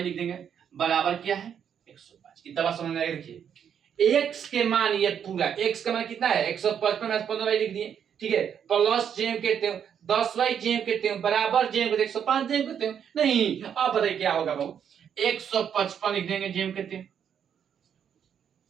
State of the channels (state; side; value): quieter; left; 8.3 dB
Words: लिख देंगे बराबर क्या है 105। कितना बात समझ में आएगा। देखिए x के मान, ये पूरा x का मान कितना है 155 माइनस 15y लिख दिए। ठीक है, प्लस जेम कहते हो 10y जेम कहते हो बराबर जेम कहते 105 जेम कहते हो। नहीं, अब बताइए क्या होगा बाबू 155 लिख देंगे जेम कहते हो।